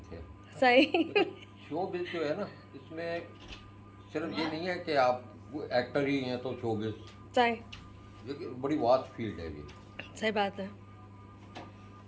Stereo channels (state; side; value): identical; both; correlation 1.00